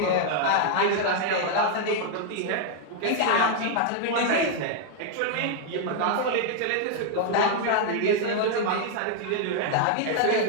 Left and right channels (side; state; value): both; different; correlation 0.00